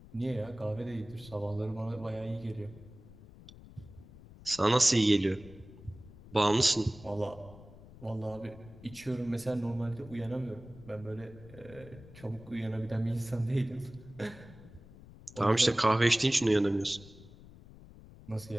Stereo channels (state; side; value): noise; left; rumble, 19 dB below the sound